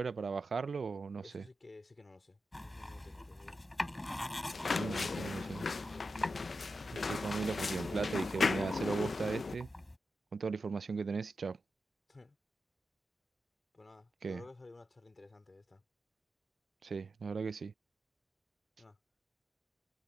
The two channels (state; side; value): normal; both; correlation 0.89